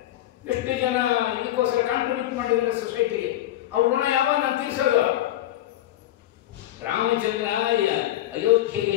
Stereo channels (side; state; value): right; quieter; 13.8 dB